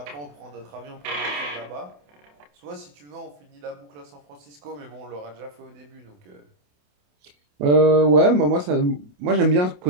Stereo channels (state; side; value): late; left; 28 ms